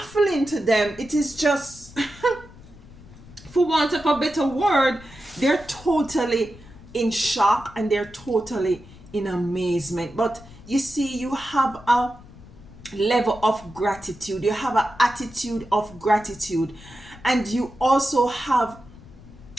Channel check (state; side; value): noise; left; rumble, 20 dB below the sound